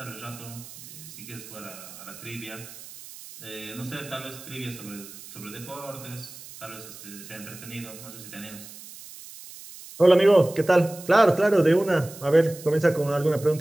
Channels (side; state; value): right; noise; hiss, 16 dB below the sound